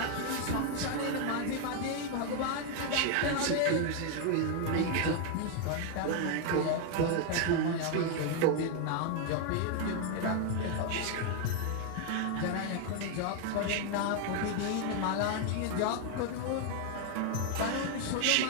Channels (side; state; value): both; different; correlation 0.00